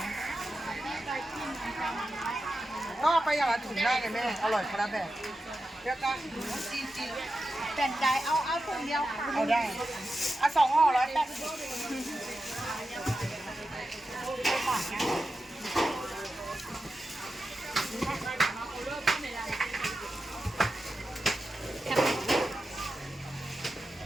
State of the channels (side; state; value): both; normal; correlation 0.91